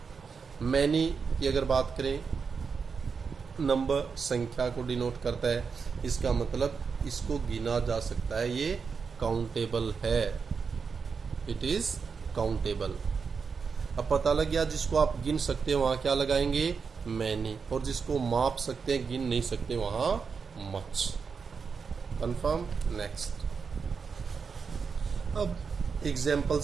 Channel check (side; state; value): left; quieter; 5.6 dB